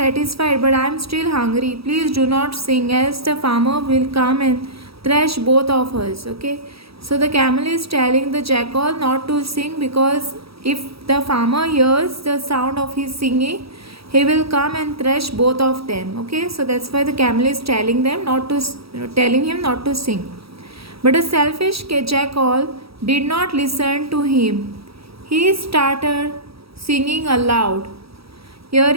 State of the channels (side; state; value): left; late; 0.76 ms